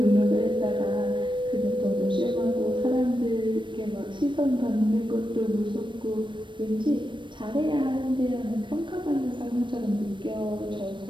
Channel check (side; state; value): left; late; 0.23 ms